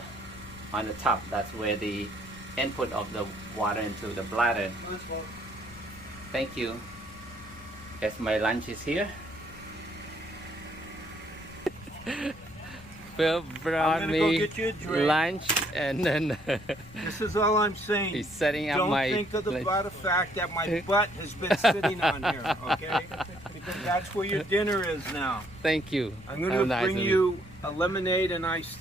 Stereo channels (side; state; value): left; noise; rumble, 20 dB below the sound